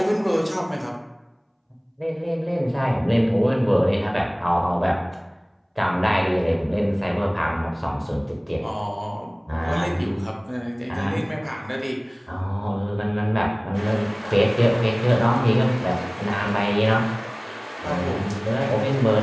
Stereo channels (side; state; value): both; identical; correlation 1.00